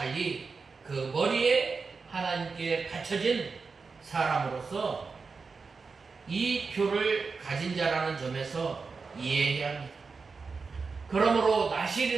그 머리에 하나님께 갖춰진 사람으로서 이 표를 가진 자라는 점에서 이해해야 합니다. 그러므로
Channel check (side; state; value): left; quieter; 4.7 dB